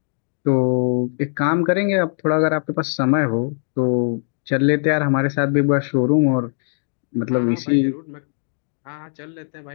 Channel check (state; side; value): silent; right; digital silence